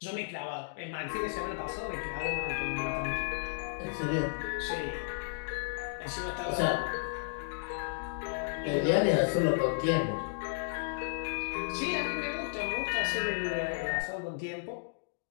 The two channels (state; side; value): silent; right; digital silence